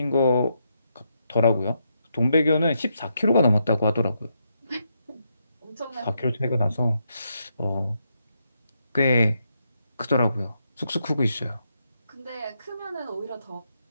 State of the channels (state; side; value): inverted; both; correlation -0.80